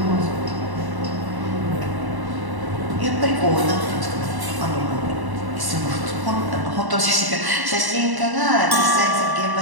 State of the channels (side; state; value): left; late; 1.1 ms